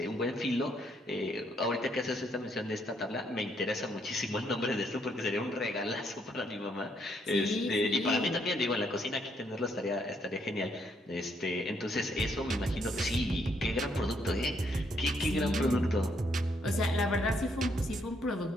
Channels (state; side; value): normal; both; correlation 0.72